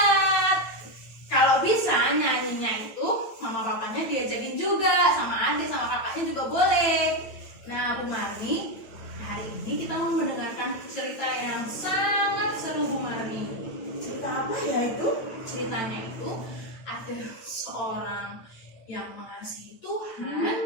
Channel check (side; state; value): right; late; 9.0 ms